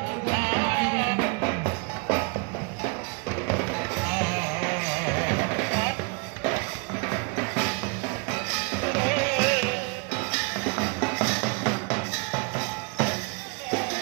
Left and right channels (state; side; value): quieter; left; 33.0 dB